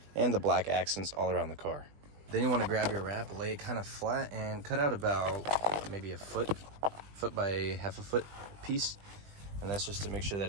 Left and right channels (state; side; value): late; left; 20 ms